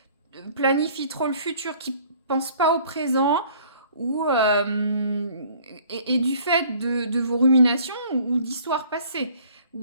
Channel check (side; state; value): both; inverted; correlation -0.55